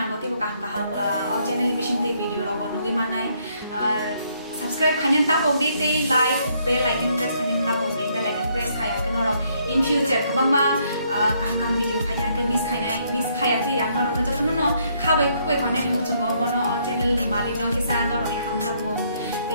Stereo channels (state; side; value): inverted; both; correlation -0.70